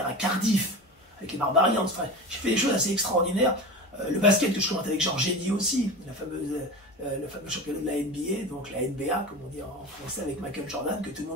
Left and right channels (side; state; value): both; normal; correlation 0.29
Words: à Cardiff, avec les Barbarians, enfin, j'ai fait des choses assez extraordinaires. Le basket que je commente avec Georges Eddy aussi, le fameux championnat de la NBA, donc la NBA, comme on dit en français, avec Michael Jordan, que tout le